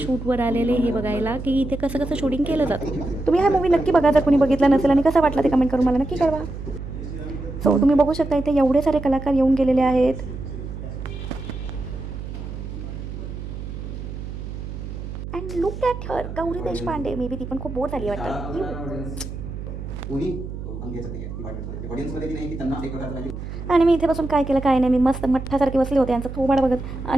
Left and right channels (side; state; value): right; noise; hum, 8 dB below the sound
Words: शूटवर आलेले हे बघायला की इथे कसं कसं शूटिंग केलं जातं. तुम्ही हा मूवी नक्की बघा जर कोणी बघितला नसेल, आणि कसा वाटला ते कमेंट करून मला नक्की कळवा. सो तुम्ही बघू शकता इथे एवढे सारे कलाकार येऊन गेलेले आहेत. And look at her, Gauri Deshpande. May be ती पण खूप बोर झाली वाटतं. आणि मी इथे बसून काय केलं काय नाही, मी मस्त मठ्ठासारखे बसले होते यांचं थोबाड बघत,